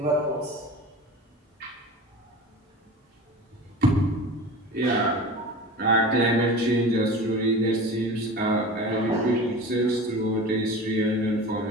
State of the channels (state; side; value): normal; both; correlation 0.35